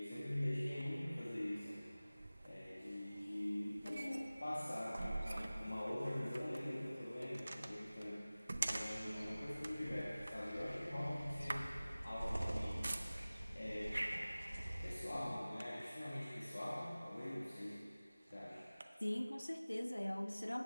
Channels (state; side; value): inverted; both; correlation -0.98